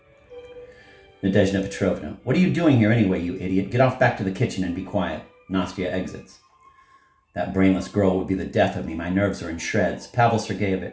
Nadezhda Petrovna, what are you doing here anyway, you idiot? Get off back to the kitchen and be quiet. Nastya exits. That brainless girl would be the death of me. My nerves are in shreds. Pavel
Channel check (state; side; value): identical; both; correlation 1.00